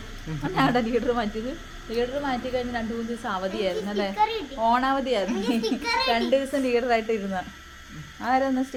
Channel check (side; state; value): both; identical; correlation 1.00